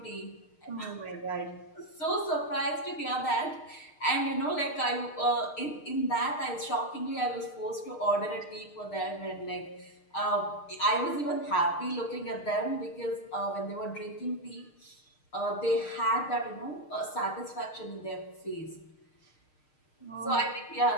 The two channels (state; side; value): late; right; 6.5 ms